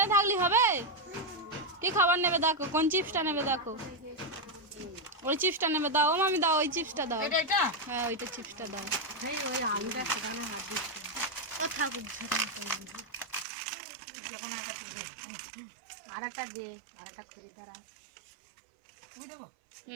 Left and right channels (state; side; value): drops out; left; at 13.5 s